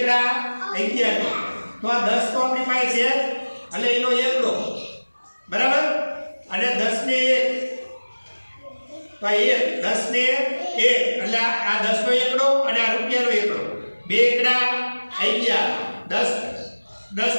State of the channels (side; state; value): both; inverted; correlation -1.00